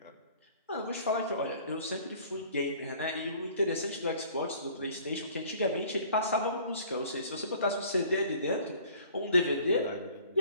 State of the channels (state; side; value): inverted; both; correlation -0.51